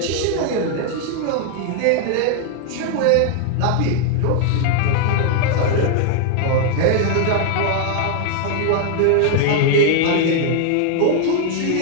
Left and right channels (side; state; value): both; different; correlation 0.00